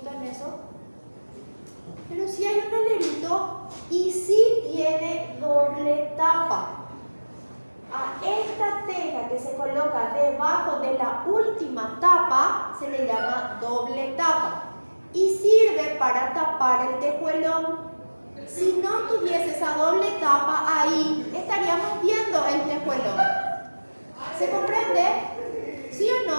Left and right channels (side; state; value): both; inverted; correlation -1.00